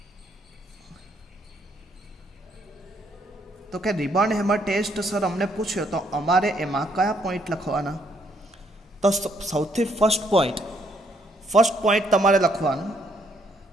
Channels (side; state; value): both; normal; correlation 0.70